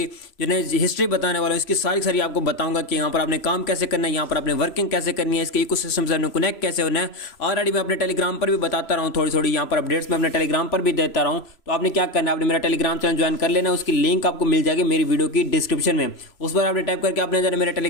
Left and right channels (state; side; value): late; right; 3.0 ms